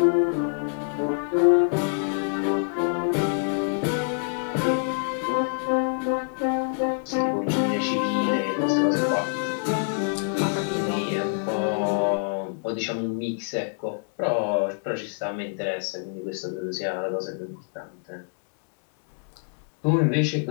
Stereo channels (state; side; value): silent; right; digital silence